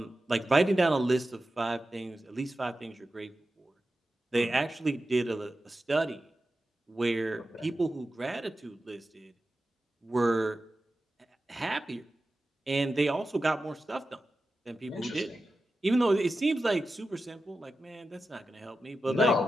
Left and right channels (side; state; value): both; normal; correlation 0.92